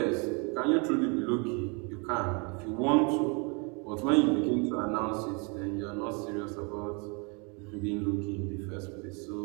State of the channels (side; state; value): left; quieter; 33.0 dB